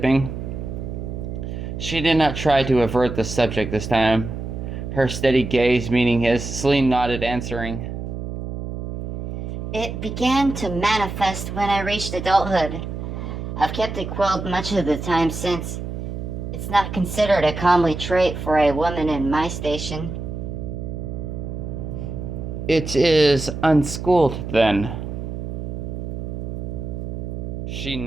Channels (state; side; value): noise; right; hum, 6 dB below the sound